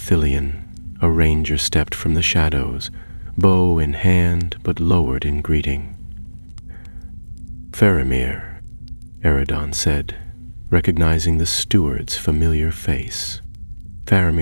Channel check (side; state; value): both; inverted; correlation -1.00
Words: a ranger stepped from the shadows, bow in hand but lowered in greeting. "Faramir," Eridan said, recognizing the steward's familiar face.